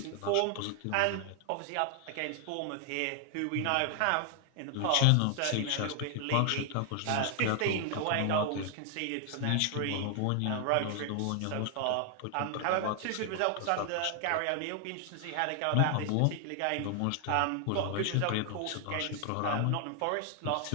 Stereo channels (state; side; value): different; both; correlation 0.00